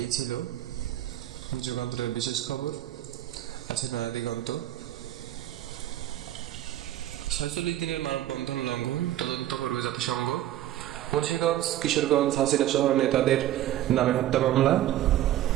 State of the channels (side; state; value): left; quieter; 13.1 dB